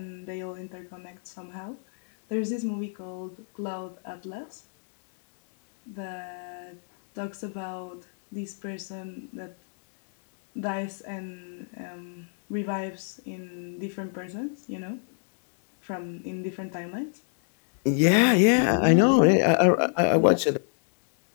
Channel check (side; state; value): right; silent; digital silence